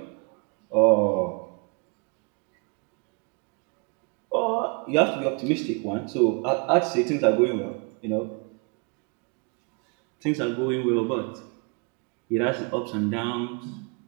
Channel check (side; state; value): left; quieter; 34.5 dB